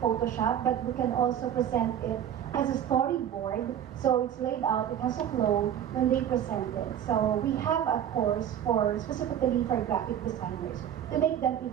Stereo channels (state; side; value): quieter; left; 10.0 dB